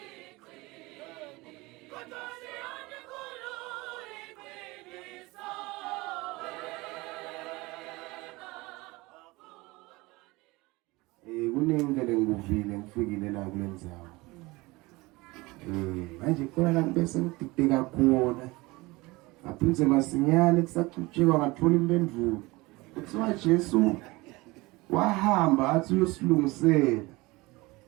Kunengele ngivile ngifikile la kulendzawo. Manje khona la bese ngidideka khona. Aphindze masinyane kusacutshekwa ngathola impendulo. Kuthiwa Jesu wahamba athi uyosilungisela.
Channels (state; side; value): quieter; left; 22.4 dB